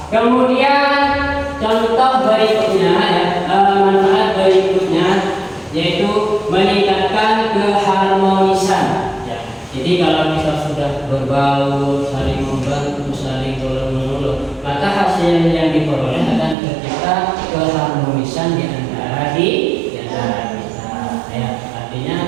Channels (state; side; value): drops out; left; at 16.6 s